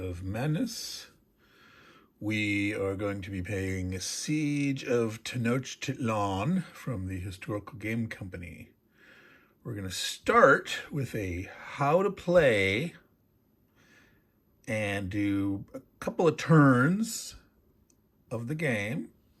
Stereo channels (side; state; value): both; identical; correlation 1.00